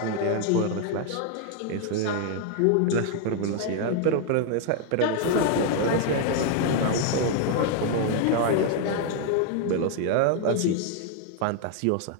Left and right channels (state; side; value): different; both; correlation 0.00